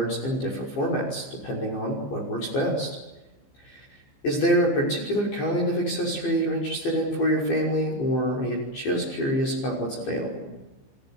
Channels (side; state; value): right; late; 15 ms